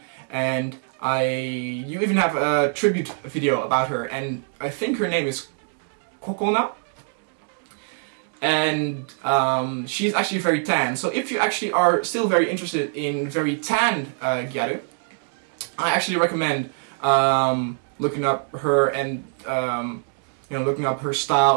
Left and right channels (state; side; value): silent; left; digital silence